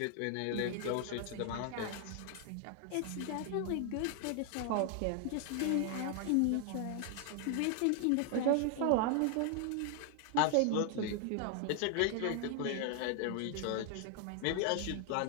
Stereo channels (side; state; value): both; different; correlation 0.00